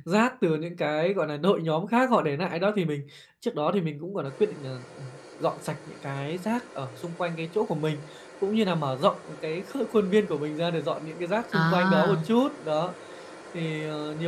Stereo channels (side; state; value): both; identical; correlation 1.00